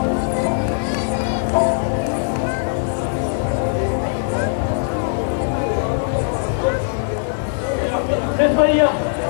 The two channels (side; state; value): right; silent; 66 dB below the other